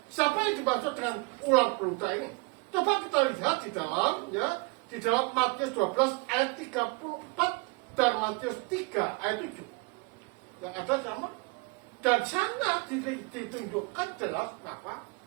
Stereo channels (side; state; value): left; quieter; 29.7 dB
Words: siapa yang dimaksud dengan ular beludak ini? Coba kita lihat di dalam Matius 12 ayat 34 dan Matius 3 ayat 7. Yang ada sama. Dan sana ditunjukkan jelas apa?